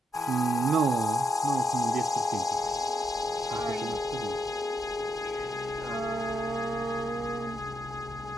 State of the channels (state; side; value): normal; both; correlation 0.80